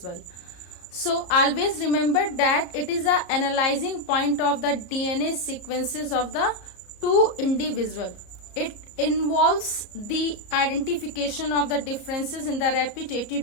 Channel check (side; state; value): right; late; 34 ms